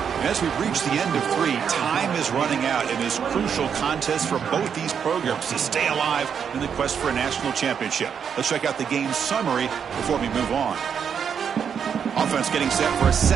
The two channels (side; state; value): left; quieter; 7.4 dB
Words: as we've reached the end of 3, time is running out in this crucial contest for both these programs to stay alive in the quest for a national championship. Let's check out the game summary before we move on. Offense getting set for a